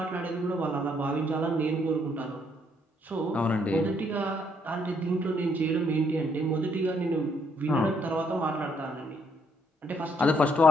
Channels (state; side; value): normal; both; correlation 0.71